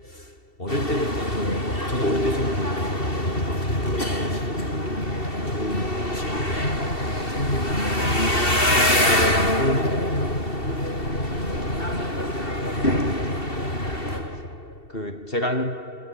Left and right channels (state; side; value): late; right; 2.7 ms